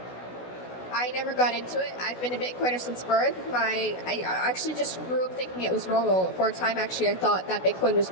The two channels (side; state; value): right; late; 16 ms